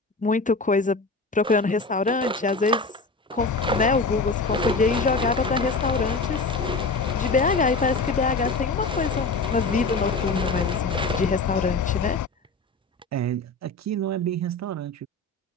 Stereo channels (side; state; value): right; quieter; 3.5 dB